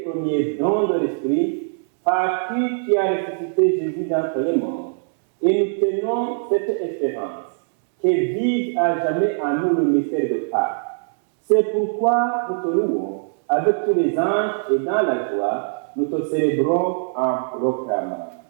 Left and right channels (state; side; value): silent; left; digital silence